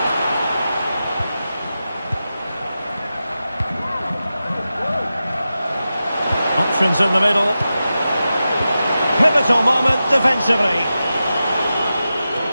Options in the middle. Pivotal moment defensively.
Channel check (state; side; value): inverted; both; correlation -0.92